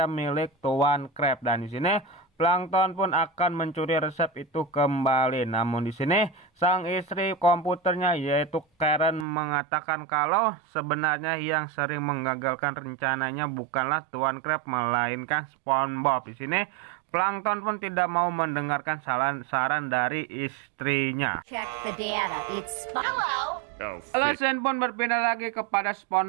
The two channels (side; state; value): left; drops out; at 9.2 s